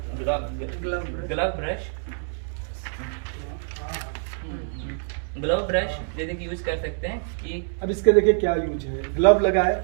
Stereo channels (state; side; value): silent; left; 61 dB below the other